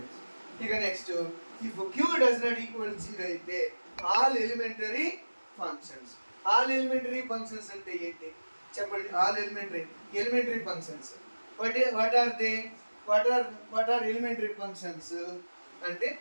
ఇక next, if Q does not equal 0 అయితే all elementary functions. All elementary functions అంటే ఏంటి చెప్పండి? All elementary functions what are elementary functions అంటే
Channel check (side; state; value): both; inverted; correlation -1.00